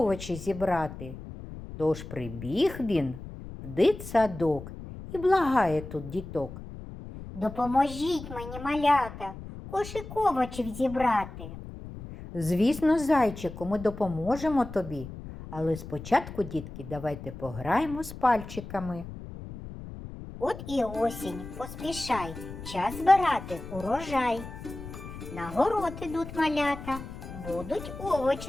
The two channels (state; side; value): noise; left; rumble, 12 dB below the sound